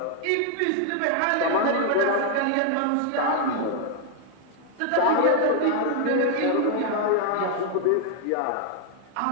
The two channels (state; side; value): different; both; correlation 0.00